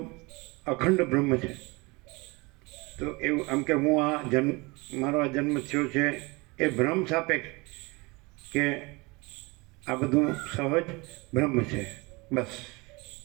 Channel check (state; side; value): quieter; left; 25.7 dB